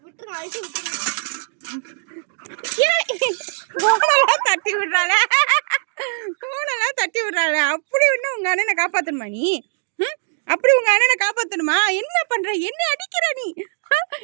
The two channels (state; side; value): silent; left; digital silence